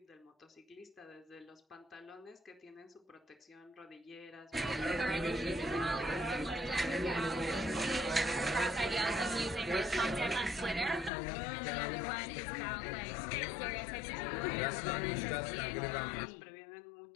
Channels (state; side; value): drops out; right; at 11.1 s